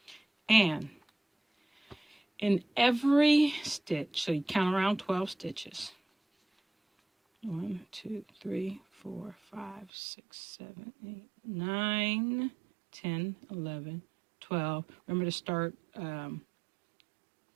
And in every stitch, so you count around 12 stitches. 1, 2, 3, 4, 5, 6, 7, 8, 9, 10, 11, 12. Remember to start,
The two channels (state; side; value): drops out; left; at 9.9 s